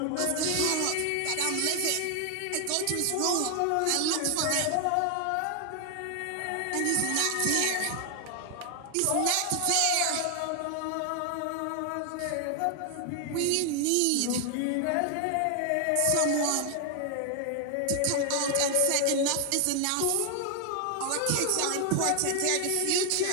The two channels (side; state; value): both; different; correlation 0.00